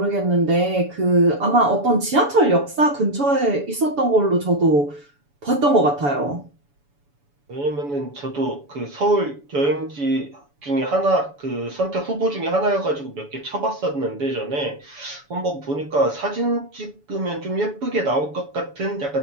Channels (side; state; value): left; late; 7.0 ms